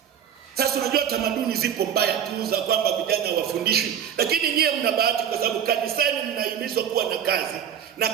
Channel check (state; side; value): quieter; left; 8.9 dB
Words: Sasa unajua tamaduni zipo mbaya tu za kwamba vijana wafundishwe, lakini nyie mna bahati kwa sababu kanisani mnahimizwa kuwa na kazi, na